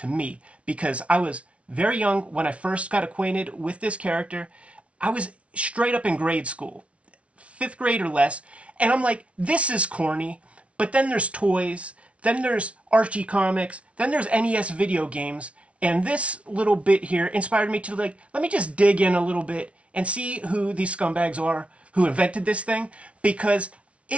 me, because I was very young when I first got acquainted with this character. I was straight up in grade school, fifth grade or less, and I'm like, this is corny. But then there's toys, then there's Archie comics, then there's NES video games, and this little bit here inspired me to like, let me just dig in a little bit and see who these scumbags are who invented this thing, because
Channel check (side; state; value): left; late; 0.062 ms